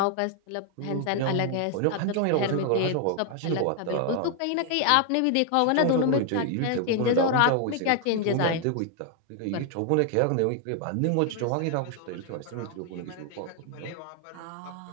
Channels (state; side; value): different; both; correlation 0.00